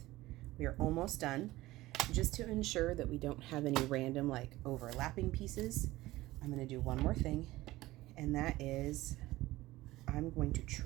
We are almost done. Just to ensure that we don't have any random like overlapping pieces, I'm going to do one more thing, and that is I'm going to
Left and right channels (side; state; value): left; quieter; 17.8 dB